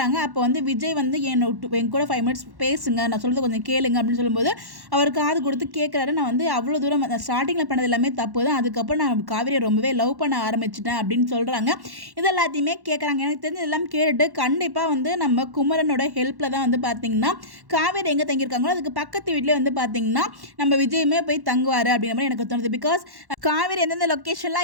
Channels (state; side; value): late; left; 1.1 ms